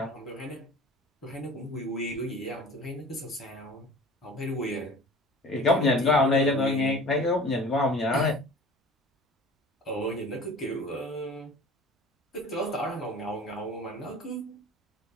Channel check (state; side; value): normal; both; correlation 0.42